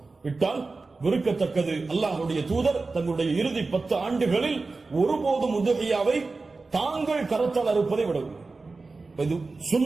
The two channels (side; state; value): left; quieter; 3.8 dB